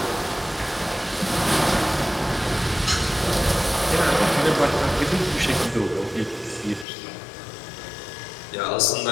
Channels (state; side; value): drops out; right; at 6.9 s